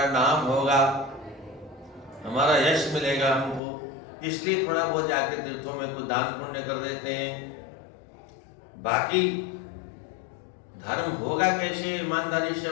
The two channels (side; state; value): right; drops out; at 3.6 s